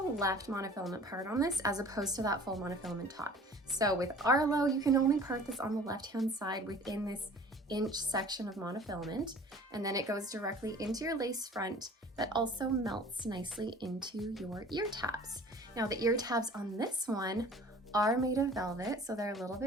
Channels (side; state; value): both; normal; correlation 0.46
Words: left monofilament part on this as opposed to that full monofilament top. So with Arlo, you can only part this on the left-hand side within this inch section of monofilament, and then it goes directly into your lace front that also melts nicely into your ear tabs. Now the ear tabs on this one are made of velvet, so they're a little